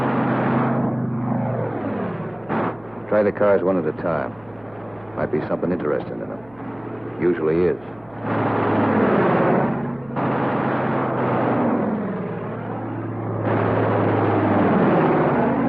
Try the cars one at a time. Might be something interesting in them. Usually is.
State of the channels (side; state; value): right; noise; hum, 28 dB below the sound